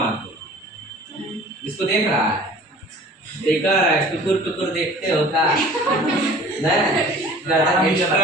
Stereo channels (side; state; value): both; normal; correlation 0.46